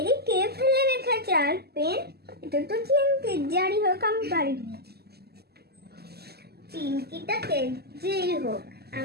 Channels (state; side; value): late; left; 0.46 ms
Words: কে ফেলে রেখেছে? আর পেন, এটা তো চিমকি। যাই হোক আমি পারি, চিমকিটাকে যেই হোক